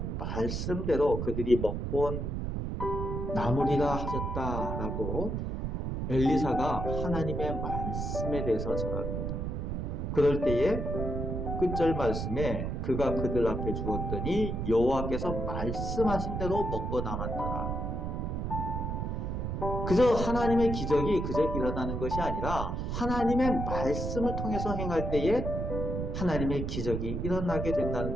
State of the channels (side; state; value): right; noise; rumble, 2 dB below the sound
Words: 말씀대로 그들이 먹고 남으리라 하셨다라고 엘리사가 하나님의 말씀에 대해서 전합니다. 그럴 때에 끝절 말씀에 그가 그들 앞에 주었더니 여호와께서 말씀하신 대로 먹고 남았더라. 그저 하나님의 기적이 그저 일어나는 것이 아니라 하나님의 말씀을 통해서 행할 때에 하나님의 기적이 일어나게 된다는